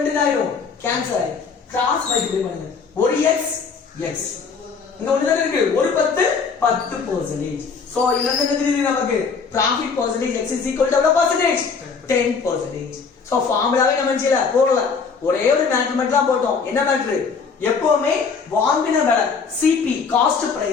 ஆயிடும் கேன்சல் ஆயிடும் கிராஸ் மல்டிப்ளை பண்ணுங்க ஒரு x x இங்க ஒண்ணு தான் இருக்கு ஒரு 10% சோ இதுல இருந்து என்ன தெரியுது நமக்கு profit percentage x is equal to எவ்வளவு percentage 10% சோ ஃபார்முலாவே நம்ம செய்யல போடல ஒரே ஒரு மேட்ரிமெண்ட் தான் போட்டோம் என்ன மேட்ரு எப்பவுமே வாங்கின விலை CP காஸ்ட்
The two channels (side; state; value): right; quieter; 5.4 dB